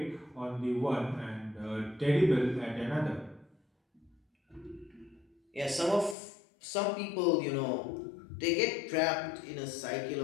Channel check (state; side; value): drops out; right; at 6.2 s